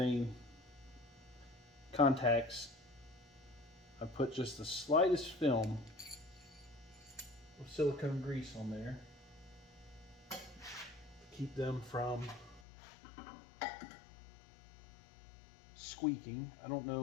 contacts, I put just the slightest film of silicone grease on there to keep them from squeaking. I don't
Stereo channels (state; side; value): drops out; right; at 12.6 s